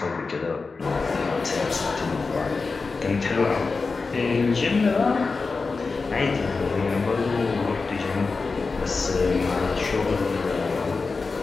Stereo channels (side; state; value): right; quieter; 4.3 dB